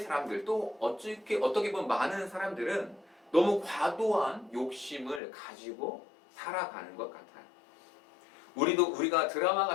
사람들 또 어떻게 보면 많은 사람들은 너무 과도한 욕심을 가지고 살아가는 것 같아요. 우리가 드라마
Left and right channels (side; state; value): right; drops out; at 5.2 s